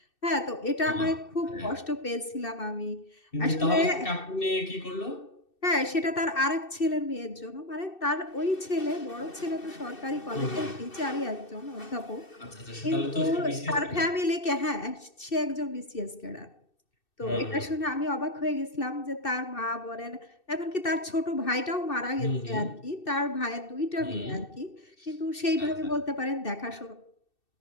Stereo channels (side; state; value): right; late; 2.6 ms